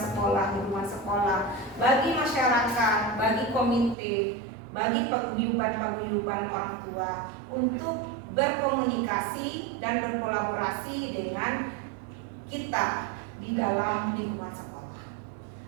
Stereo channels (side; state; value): left; drops out; at 4.0 s